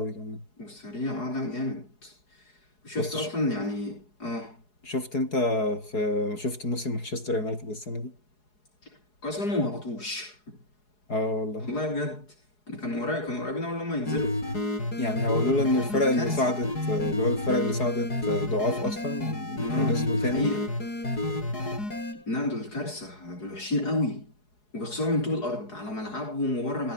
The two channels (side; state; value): right; late; 4.8 ms